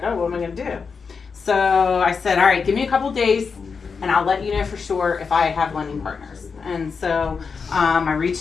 oh, what am I gonna do? So I said, all right, give me a couple days and I'll let you know for sure if I have lending partners. And so I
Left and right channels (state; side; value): quieter; right; 5.4 dB